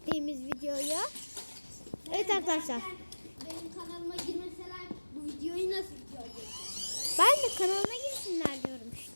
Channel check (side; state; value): both; inverted; correlation -1.00